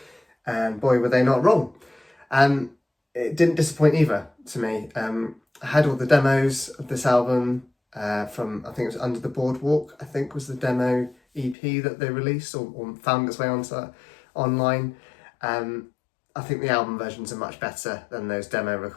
and boy, were they not wrong. It didn't disappoint either to me. I had all the demos of this album from, I think it was Under the Boardwalk, I think was the demo EP that they released or found its way onto online. I think the album versions are much better than those demo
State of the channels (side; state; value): right; drops out; at 11.6 s